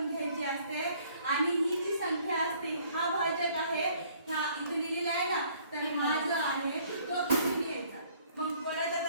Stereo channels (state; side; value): inverted; both; correlation -0.60